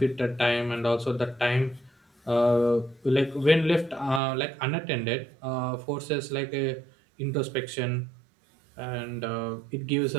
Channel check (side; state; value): left; drops out; at 4.2 s